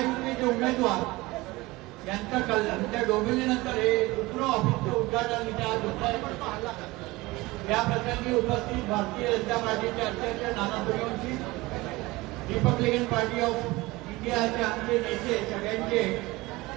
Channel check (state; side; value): quieter; left; 21.1 dB